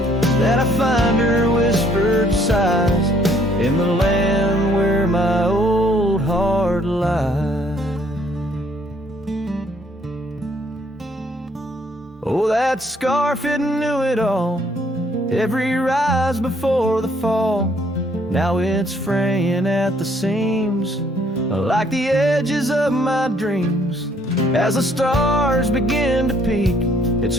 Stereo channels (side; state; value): both; normal; correlation 0.65